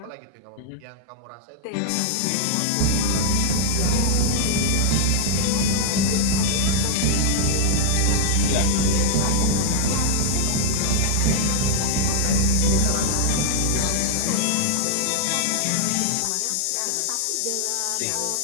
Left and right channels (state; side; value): different; both; correlation 0.00